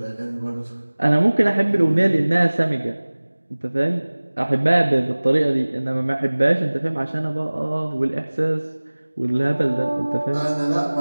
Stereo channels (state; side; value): inverted; both; correlation -1.00